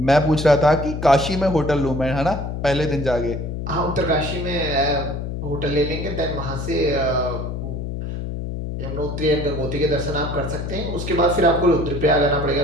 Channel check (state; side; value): noise; left; hum, 5 dB below the sound